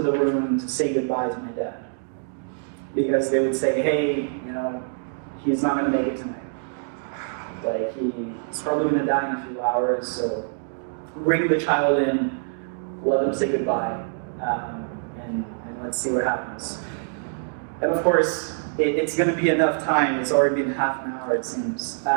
the room to say goodbye to my dad. Because they would say, hey, he's not going to make it tonight. He's probably going to die in a few hours, so bring the child in, let him say goodbye, and let's see what happens. And of course, it's going to be enough time. It's already been half an hour, it seems.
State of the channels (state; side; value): silent; left; digital silence